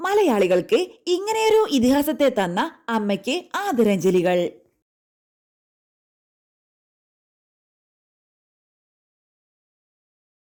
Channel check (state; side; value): identical; both; correlation 1.00